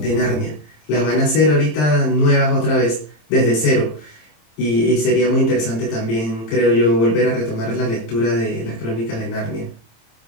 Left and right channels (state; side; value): late; right; 27 ms